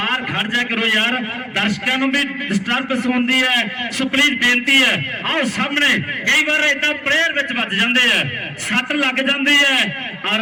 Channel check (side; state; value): both; identical; correlation 1.00